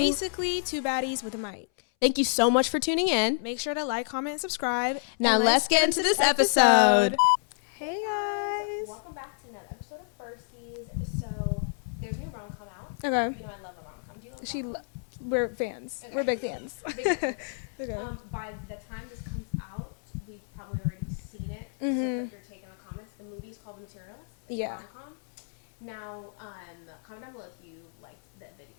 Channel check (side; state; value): right; silent; 58 dB below the other